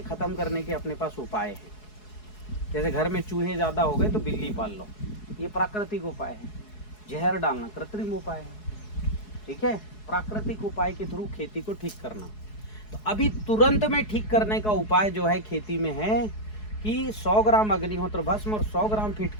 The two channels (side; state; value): right; late; 4.7 ms